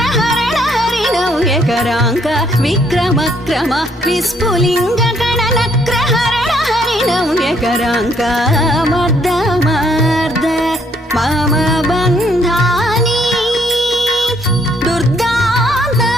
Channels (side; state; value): both; normal; correlation 0.68